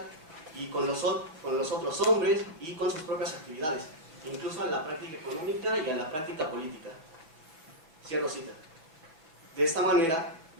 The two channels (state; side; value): late; left; 6.1 ms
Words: y con los otros hombres y con sus propias actividades, incluso a la práctica económica y a la práctica política. Cierro cita. De esta manera,